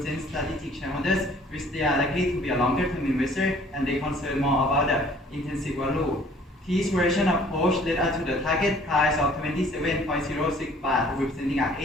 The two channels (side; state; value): both; normal; correlation 0.55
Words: strategic shareholders, which they are likely to be a longer-term investor and they concern more about the intrinsic value. This version approach led us to the target price of 27.06 baht, representing an